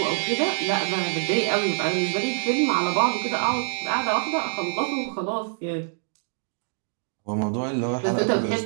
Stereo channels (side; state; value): left; silent; digital silence